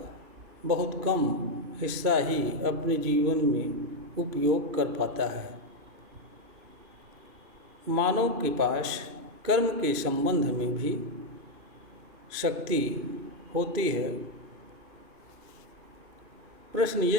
बहुत कम हिस्सा ही अपने जीवन में उपयोग कर पाता है। मानव के पास कर्म के संबंध में भी शक्ति होती है। प्रश्न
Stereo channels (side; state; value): left; late; 2.5 ms